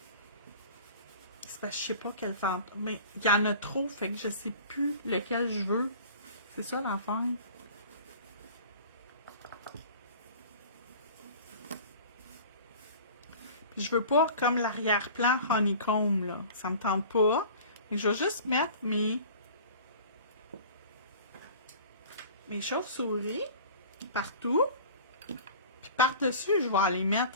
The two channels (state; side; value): inverted; both; correlation -0.42